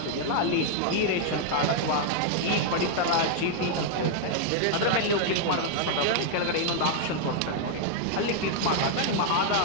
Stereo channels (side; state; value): both; different; correlation 0.00